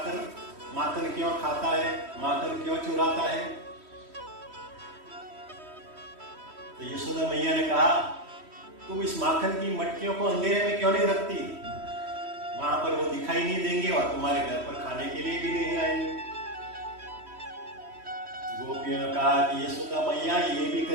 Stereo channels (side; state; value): left; late; 3.1 ms